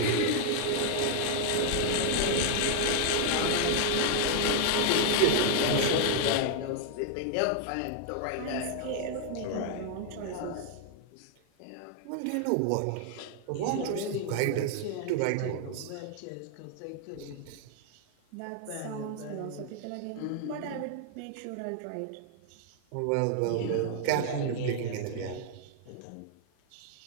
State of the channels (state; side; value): different; both; correlation 0.00